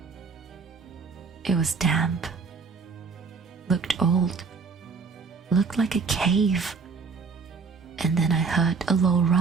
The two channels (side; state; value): left; quieter; 4.9 dB